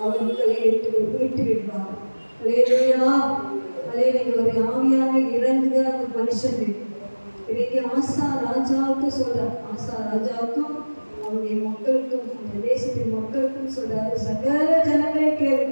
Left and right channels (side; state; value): both; inverted; correlation -1.00